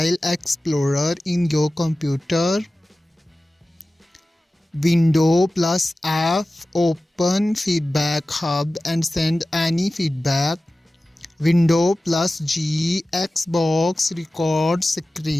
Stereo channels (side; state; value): both; normal; correlation 0.96